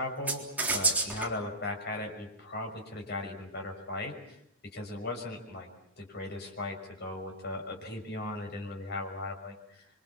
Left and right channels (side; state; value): both; normal; correlation -0.14